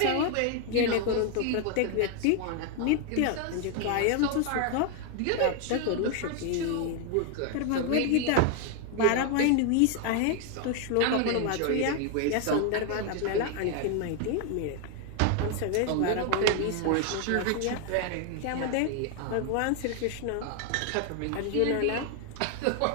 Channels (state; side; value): different; both; correlation 0.00